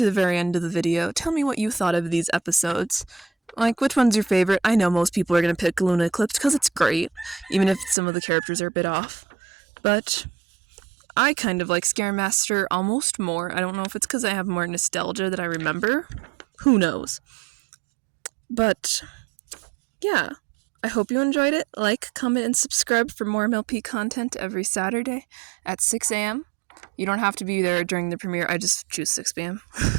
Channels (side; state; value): left; drops out; at 8.0 s